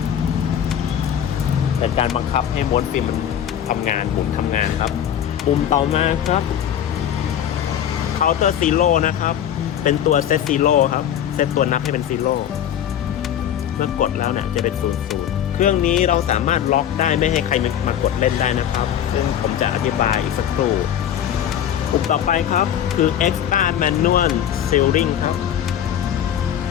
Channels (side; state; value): right; quieter; 9.9 dB